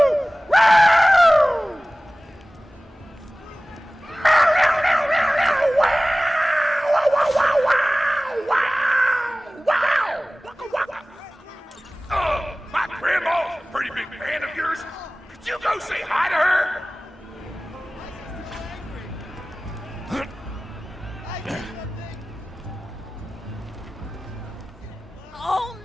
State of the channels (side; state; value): both; normal; correlation 0.98